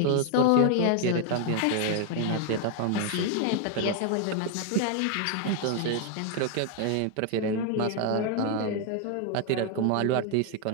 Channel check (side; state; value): both; different; correlation 0.00